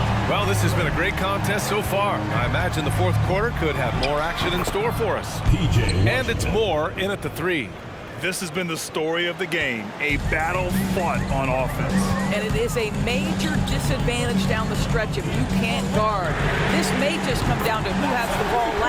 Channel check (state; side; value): identical; both; correlation 1.00